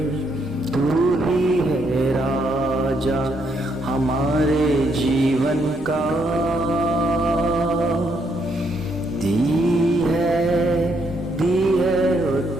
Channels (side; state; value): both; normal; correlation 0.74